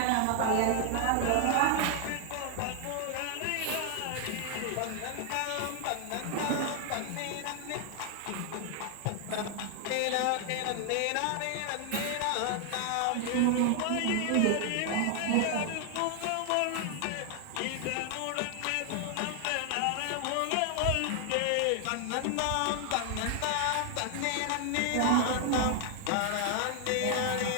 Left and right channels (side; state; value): both; different; correlation 0.00